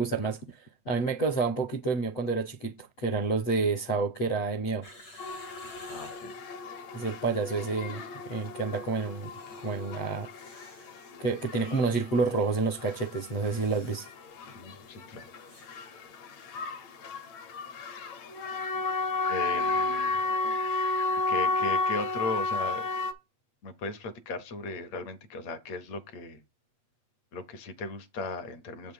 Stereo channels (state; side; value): late; right; 8.4 ms